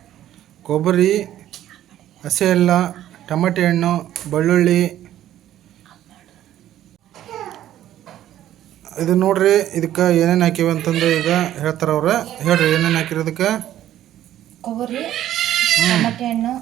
ಕೊಬ್ಬರಿ, ಹಸಿ ಎಲ್ಲ, ಟೊಮೆಟೊ ಹಣ್ಣು, ಬೆಳ್ಳುಳ್ಳಿ, ಇದು ನೋಡ್ರಿ, ಇದಕ್ಕೆ ಏನೇನು ಹಾಕಿವಿ ಅಂತಂದು ಈಗ ಹೇಳ್ತಾರೆ ಅವ್ರು. ಹೇಳ್ರಿ ಏನೇನು ಹಾಕಿರೋದಕ್ಕೆ. ಕೊಬ್ಬರಿ, ಟಮಾಟೆ ಹಣ್ಣು,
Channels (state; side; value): quieter; left; 12.3 dB